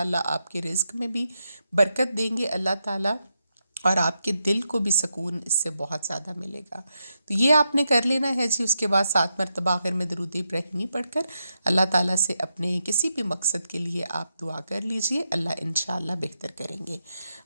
आपके रिज़्क़ में भी बरकत देंगे अल्लाह ताला, और आपके दिल को भी सुकून इससे बहुत ज़्यादा मिलेगा। तो ये आपने कर लेना है जी। उसके बाद 7 मरतबा आखिर में दरूद इब्राहिमी पढ़कर अल्लाह ताला से अपने किसी भी मकसद के लिए आप दुआ कर लीजिए, अल्लाह इंशाअल्लाह बेहतर करेंगे।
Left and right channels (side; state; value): both; inverted; correlation -0.85